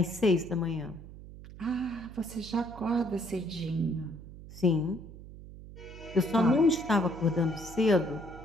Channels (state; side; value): noise; right; hum, 15 dB below the sound